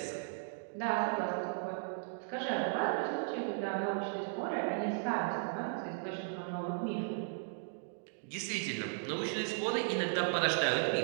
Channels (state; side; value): silent; left; digital silence